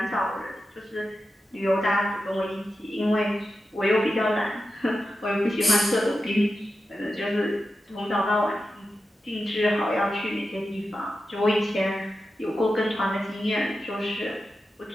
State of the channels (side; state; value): both; normal; correlation 0.91